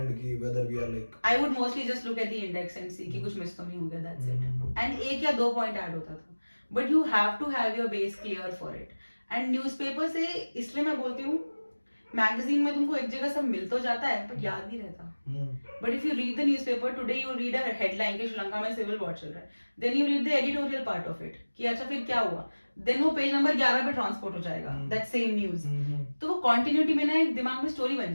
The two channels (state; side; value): inverted; both; correlation -1.00